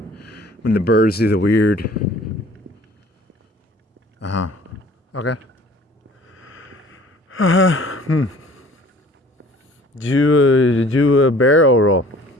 when the birds do the weird. Okay. Do a barrel roll.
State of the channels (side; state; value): both; normal; correlation 0.51